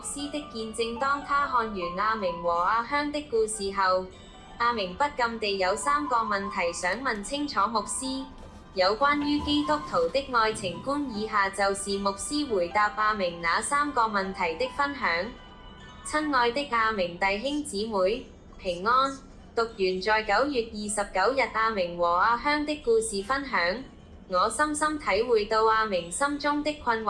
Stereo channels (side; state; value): both; identical; correlation 1.00